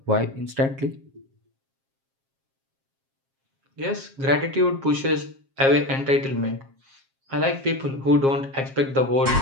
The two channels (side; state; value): left; late; 7.4 ms